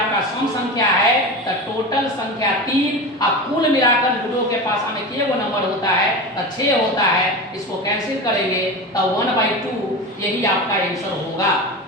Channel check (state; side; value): normal; both; correlation 0.26